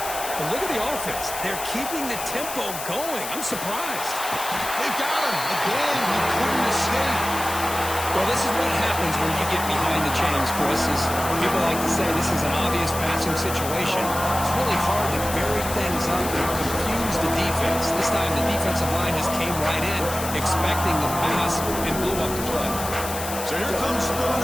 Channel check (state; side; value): noise; left; hiss, 8 dB below the sound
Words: But look at the offense. They're keeping the tempo going. I'm surprised. They've got him. Again, he couldn't escape. Well, this is what happens when you get behind the chains, Chris. As people like to say, this is an obvious passing situation. It's really hard to vary things up and confuse the defense. This time, the defensive line just came right in, expecting the pass, and blew up the play. So here comes